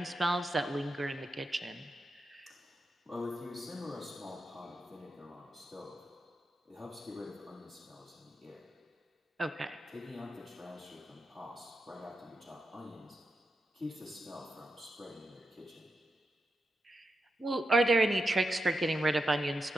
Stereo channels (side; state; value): both; normal; correlation 0.87